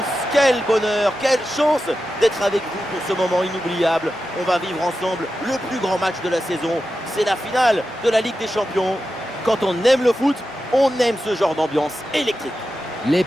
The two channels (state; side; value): normal; both; correlation 0.91